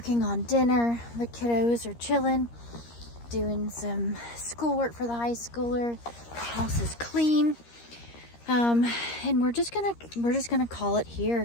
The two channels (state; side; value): late; right; 13 ms